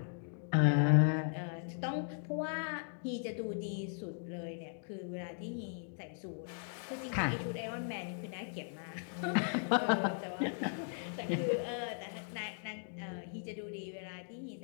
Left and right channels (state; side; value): silent; right; digital silence